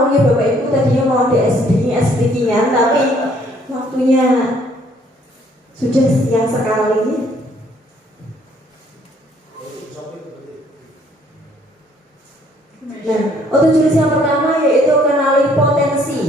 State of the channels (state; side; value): normal; both; correlation 0.63